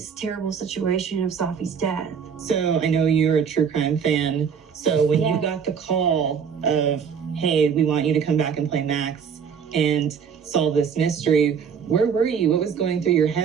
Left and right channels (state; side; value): quieter; left; 6.9 dB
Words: terrible situation of Safi's death. So I know you're a true crime fan. So when Yeah. you got the call of, hey, we want you to come back and play Max and solve this mystery, where were you? What was going through your